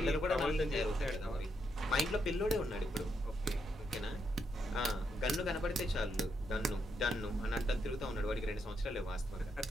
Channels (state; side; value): normal; both; correlation 0.80